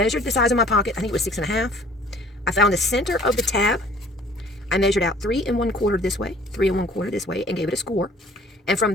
the size of my pocket. I think it was 6 1/2. I found the center of the tab. I measured out 3 1/4 this way, 3 1/4 this way, and gave it a score. And from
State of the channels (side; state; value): both; normal; correlation 0.53